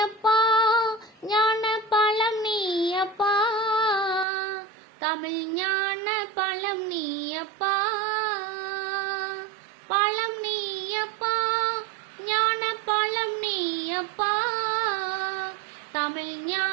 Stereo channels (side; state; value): left; drops out; at 4.2 s